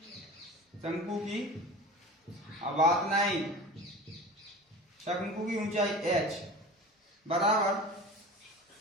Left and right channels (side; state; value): both; normal; correlation 0.36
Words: शंकु की बात नहीं, शंकु की ऊंचाई h बराबर